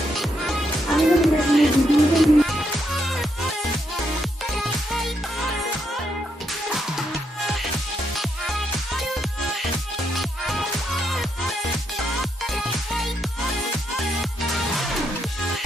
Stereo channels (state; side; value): normal; both; correlation 0.79